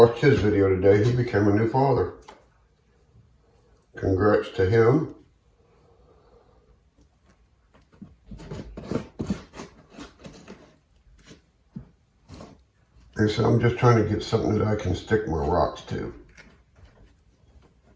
his video today. He became a new father. Congrats to him. He said, I'm just trying to get something that I can stick my rocks to.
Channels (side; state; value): both; identical; correlation 1.00